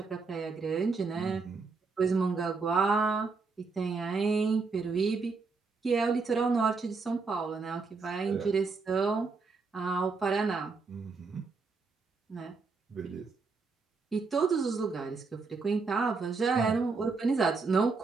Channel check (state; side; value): quieter; left; 4.4 dB